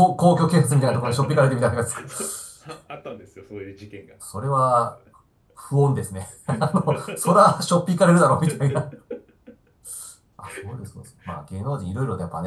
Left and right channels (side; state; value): both; identical; correlation 1.00